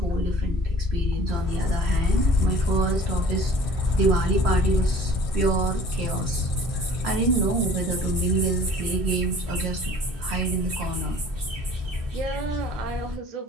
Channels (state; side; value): normal; both; correlation 0.49